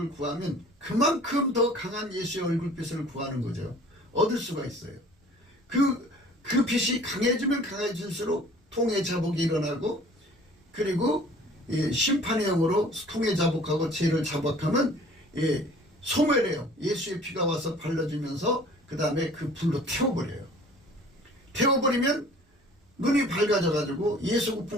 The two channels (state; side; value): normal; both; correlation 0.50